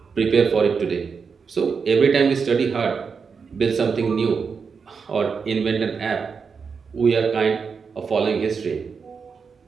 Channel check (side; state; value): left; quieter; 5.7 dB